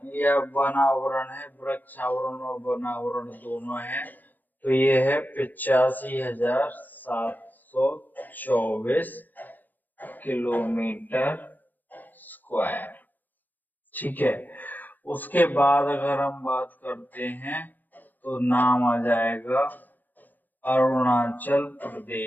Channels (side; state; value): right; late; 0.085 ms